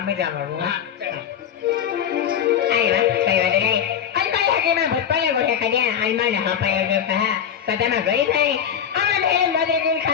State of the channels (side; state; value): right; quieter; 8.7 dB